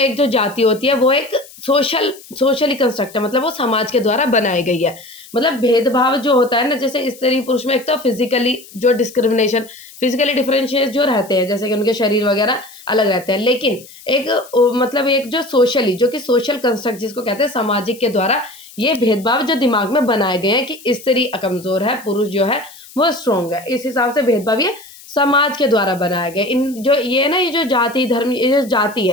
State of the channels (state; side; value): noise; left; hiss, 20 dB below the sound